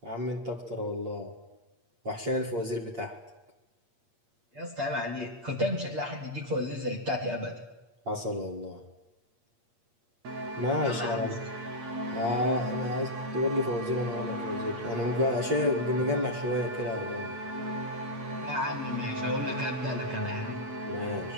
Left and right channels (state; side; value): late; left; 8.6 ms